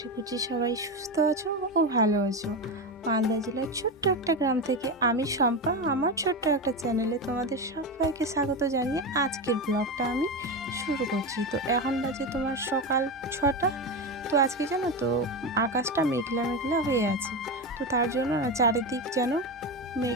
করছি সবাই সুস্থ আছো ও ভালো আছো। মালদা জেলার ছোট্ট একটা গ্রাম থেকে আমি শম্পা, আমার ছোট্ট একটা চ্যানেলে তোমাদের সবাইকে স্বাগত জানিয়ে আজকের ব্লগটা আমি শুরু করছি। তো এখন বাজে তোমার সকাল 6টা। তো আজকে জানো তো আকাশটা মেঘলা মেঘলা হয়ে আছে, তো তার জন্য না চারিদিক যেন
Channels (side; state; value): both; normal; correlation 0.17